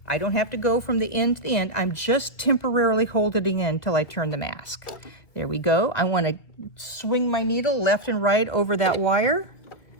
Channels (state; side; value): late; right; 1.9 ms